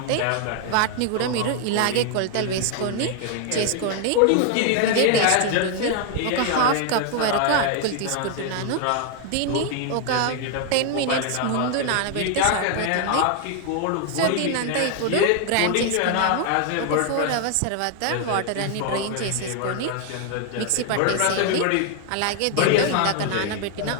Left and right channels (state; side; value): different; both; correlation 0.00